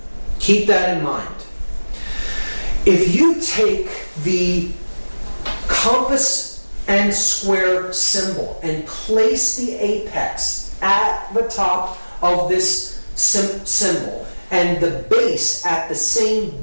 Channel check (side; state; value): both; inverted; correlation -1.00